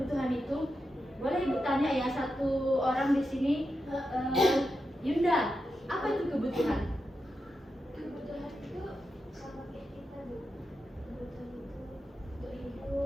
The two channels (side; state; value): both; normal; correlation 0.88